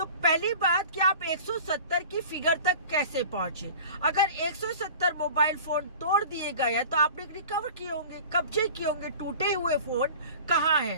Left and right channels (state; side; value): inverted; both; correlation -0.41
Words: पहली बात कि आप 170 की फिगर तक कैसे पहुंचे। अगर 170 मोबाइल फोन तोड़ दिए गए हैं तो आपने रिकवर किए होंगे, कब्जे किए होंगे, टूटे हुए फोन कहाँ